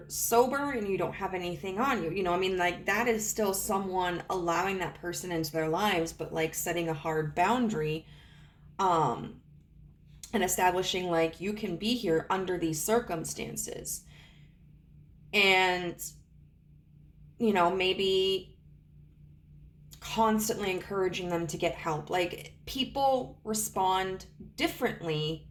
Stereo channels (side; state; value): both; identical; correlation 1.00